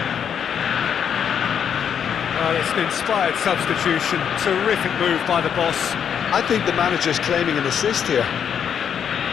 Well, it's an inspired substitution. Terrific move by the boss. I think the manager's claiming an assist here.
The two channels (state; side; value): quieter; right; 8.1 dB